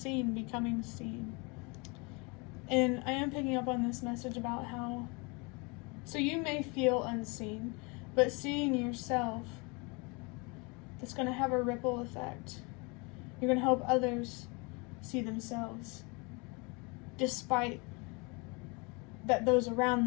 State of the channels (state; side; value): quieter; right; 29.7 dB